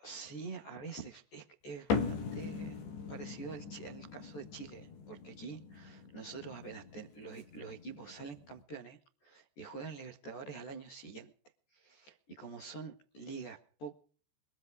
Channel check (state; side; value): late; right; 14 ms